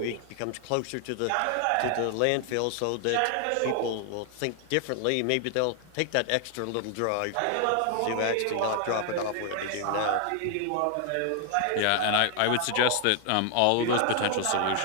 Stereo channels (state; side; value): different; both; correlation 0.00